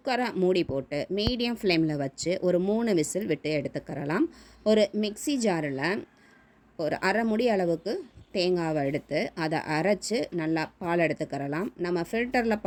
மூடி போட்டு மீடியம் ஃப்ளேமில் வச்சு ஒரு 3 விசில் விட்டு எடுத்துக்கிறலாம். ஒரு மிக்ஸி ஜாரில் ஒரு அரை முடி அளவுக்கு தேங்காவை எடுத்து அதை அரைச்சி நல்லா பால் எடுத்துக்கிறலாம். நம்ம ஃபில்டரில்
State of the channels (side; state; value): both; identical; correlation 1.00